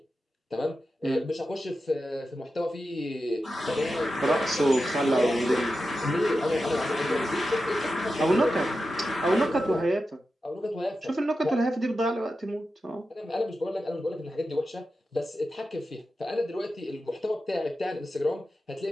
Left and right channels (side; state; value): both; normal; correlation 0.91